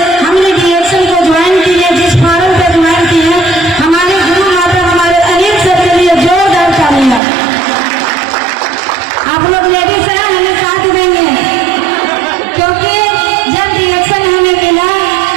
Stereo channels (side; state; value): left; drops out; at 7.2 s